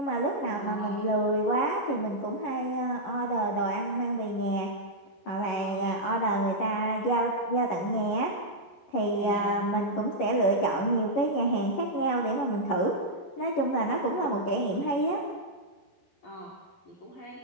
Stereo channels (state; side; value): late; right; 11 ms